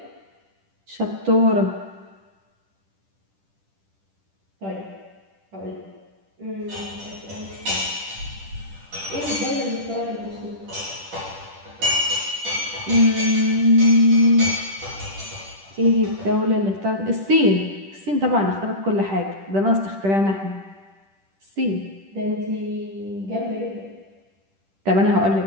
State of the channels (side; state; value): left; late; 10 ms